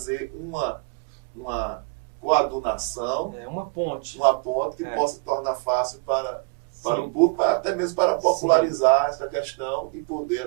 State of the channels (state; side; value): quieter; left; 34.0 dB